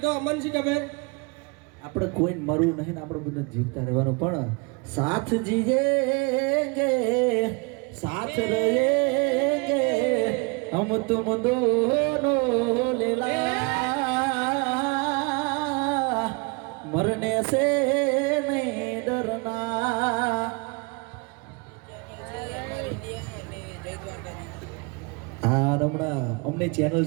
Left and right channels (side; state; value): left; quieter; 29.2 dB